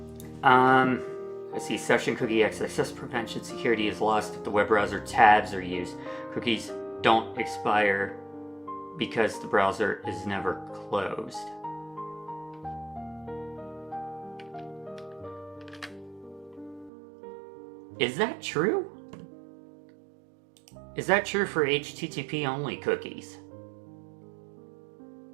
Let's see. Session cookie access prevention security is lost if the web browser tabs are used. Cookies don't expire because the browser is never closed. Is that true? Is that true for HTTP only cookies?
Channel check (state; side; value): drops out; left; at 16.9 s